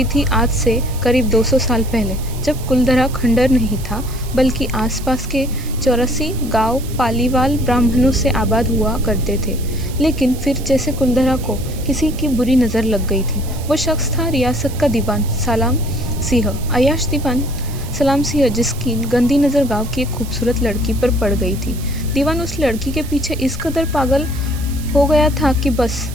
थी आज से करीब 200 साल पहले, जब कुलधरा खंडर नहीं था बल्कि आसपास के 84 गांव पालीवाल ब्राह्मणों से आबाद हुआ करते थे। लेकिन फिर जैसे कुलधरा को किसी की बुरी नज़र लग गई थी। वो शख्स था रियासत का दीवान सलाम सिंह, अय्याश दीवान सलाम सिंह, जिसकी गंदी नज़र गांव की एक खूबसूरत लड़की पर पड़ गई थी। दीवान उस लड़की के पीछे इस कदर पागल हो गया था कि बस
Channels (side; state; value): right; noise; hiss, 16 dB below the sound